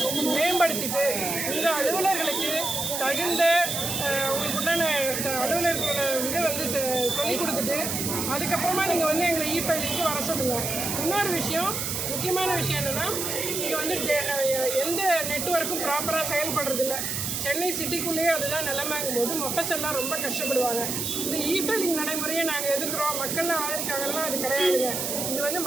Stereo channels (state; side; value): noise; right; hiss, 2 dB below the sound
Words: மேம்படுத்திட்டு உங்கள் அலுவலர்களுக்கு தகுந்த உங்களுக்கு உண்டான அலுவலர்களோட இதை வந்து சொல்லிக் கொடுத்துட்டு அதுக்கப்புறமா நீங்கள் வந்து எங்களை இ-ஃபைலிங்க்கு வர சொல்லுங்கள். இன்னொரு விஷயம், முக்கியமான விஷயம் என்னென்னா, இங்கே வந்து எந்த நெட்வொர்க்கும் ப்ராப்பராக செயல்படுறதில்ல. சென்னை சிட்டிக்குள்ளேயே அதுதான் நிலைமைங்கும் போது மொஃபஸெல்லாம் ரொம்ப கஷ்டப்படுவாங்க. இந்த இ-ஃபைலிங் நடைமுறையை நாங்கள் எதிர்க்கிறோம், மக்கள்லாம் ஆதரிக்காங்கன்னா அது கிடையாதுங்க. இது வந்து